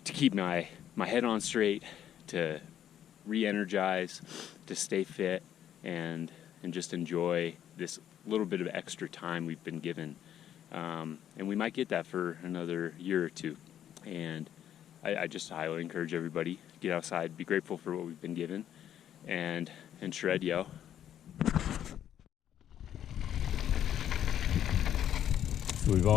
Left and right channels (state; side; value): quieter; right; 10.5 dB